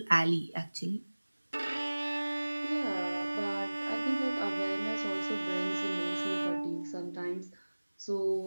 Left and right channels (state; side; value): inverted; both; correlation -1.00